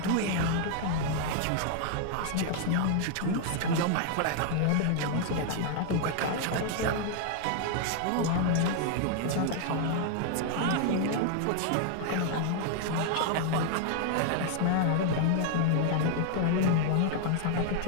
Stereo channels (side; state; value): both; different; correlation 0.00